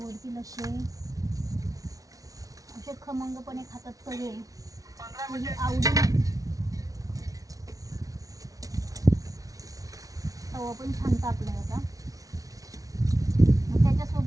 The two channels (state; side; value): late; left; 0.17 ms